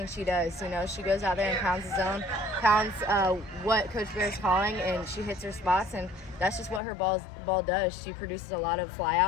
she does. You know, she goes out there and pounds the zone, pounds what Coach Bear's calling, and she hits her spots, and that's just what her ball does. She produces a lot of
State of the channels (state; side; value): drops out; right; at 6.8 s